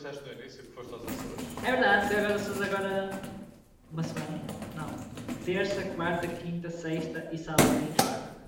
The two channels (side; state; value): both; identical; correlation 1.00